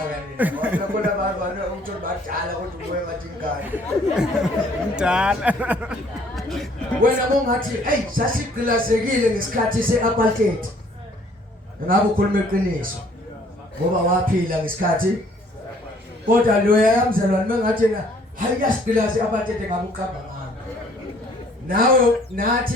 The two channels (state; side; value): normal; both; correlation 0.60